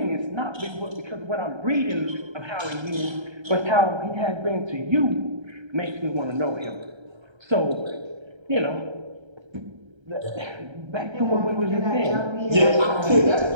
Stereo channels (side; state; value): left; late; 1.3 ms